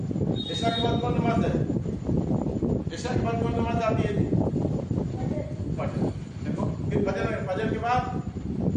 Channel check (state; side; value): identical; both; correlation 1.00